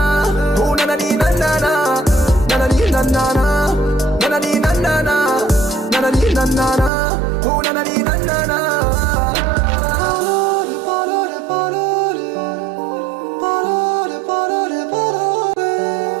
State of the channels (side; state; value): left; drops out; at 6.9 s